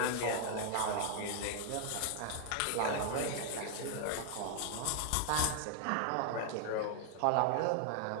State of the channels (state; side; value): different; both; correlation 0.00